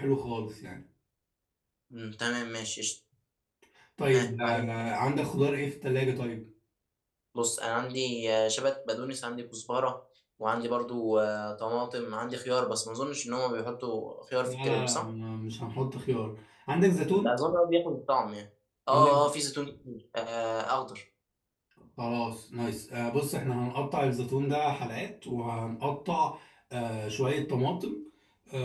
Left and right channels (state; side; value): identical; both; correlation 1.00